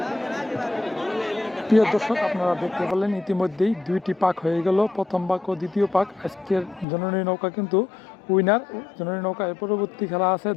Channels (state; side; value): drops out; right; at 6.9 s